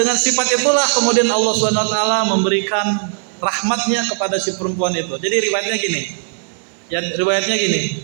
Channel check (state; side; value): silent; left; 67 dB below the other